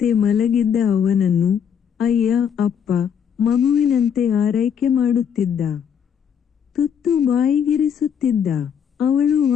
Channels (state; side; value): quieter; right; 7.9 dB